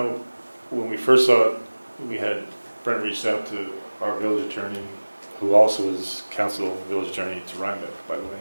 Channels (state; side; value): inverted; both; correlation -1.00